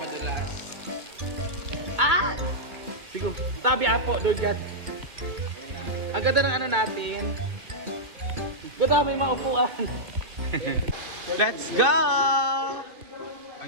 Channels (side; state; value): left; late; 2.5 ms